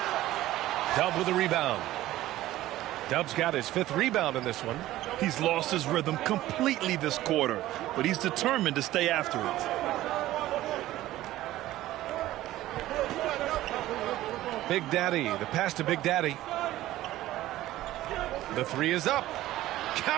Dub with a rebound. Dub's got his 5th rebound in this one. He's lost his rhythm completely this quarter, but he's determined to stay after it. Big Daddy, the pass to Big Daddy. The 3 is up.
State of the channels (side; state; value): left; quieter; 15.3 dB